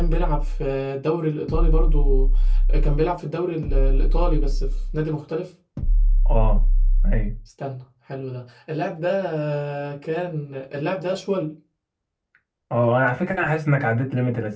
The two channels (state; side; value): identical; both; correlation 1.00